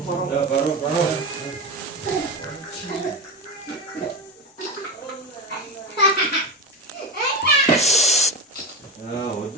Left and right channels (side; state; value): both; normal; correlation 0.19